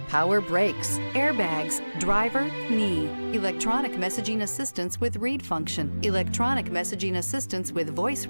power brakes, airbags, driver, knee, electronic messaging assistance with read function, electronic messaging assistance with voice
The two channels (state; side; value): inverted; both; correlation -1.00